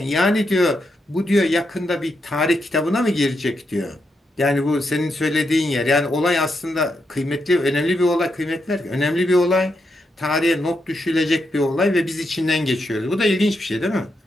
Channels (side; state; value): both; normal; correlation 0.82